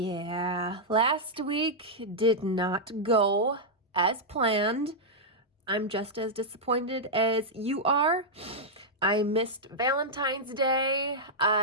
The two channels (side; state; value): both; normal; correlation -0.06